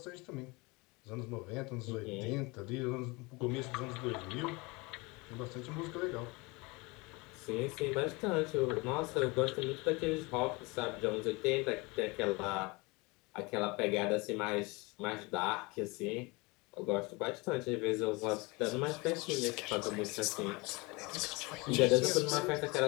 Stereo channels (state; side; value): quieter; right; 25.8 dB